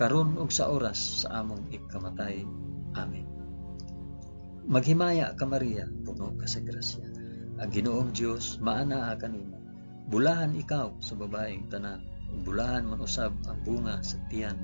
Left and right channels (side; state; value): both; inverted; correlation -1.00